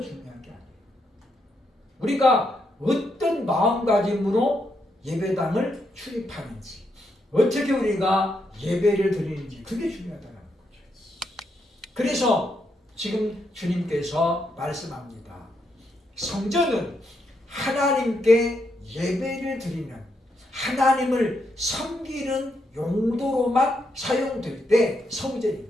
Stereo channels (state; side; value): normal; both; correlation 0.80